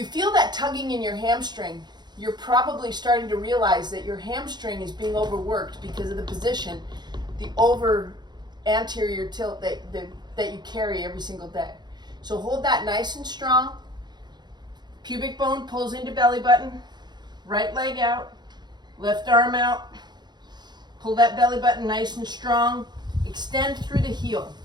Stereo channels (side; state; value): left; late; 0.21 ms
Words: feel that tugging in your hamstring, you're probably starting to realize that your hamstring is being overworked because of the position, the over anterior tilt that you carry every single day. So hold that nice and strong. Pubic bone pulls into belly button. Right leg out. Left arm out. Pull that belly button nice and strong. Extend through the heel.